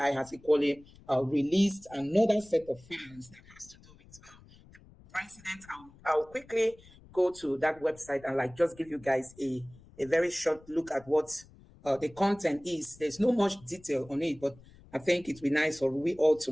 has equally released another set of files that has to do with president. I'll quickly go to that website and just give you guys a very short look at what the content is. There's no much detail on it, but I think it'd be nice for we all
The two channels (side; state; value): left; noise; rumble, 24 dB below the sound